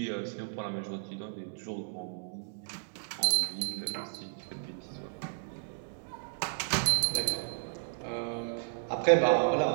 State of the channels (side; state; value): left; silent; 56 dB below the other